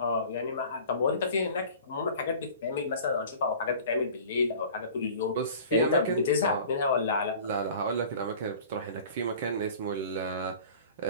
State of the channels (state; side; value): inverted; both; correlation -0.43